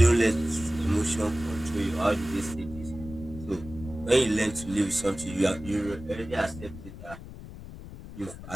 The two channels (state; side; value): noise; left; rumble, 14 dB below the sound